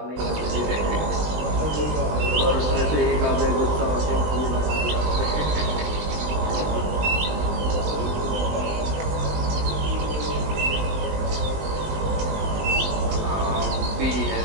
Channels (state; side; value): late; left; 20 ms